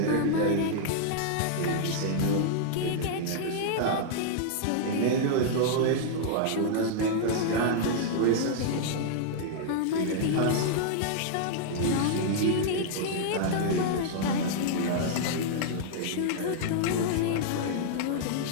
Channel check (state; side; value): different; both; correlation -0.01